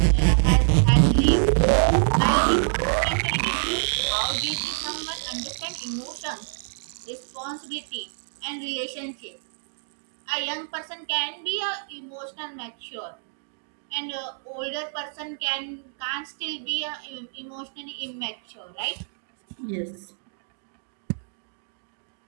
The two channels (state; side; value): silent; left; digital silence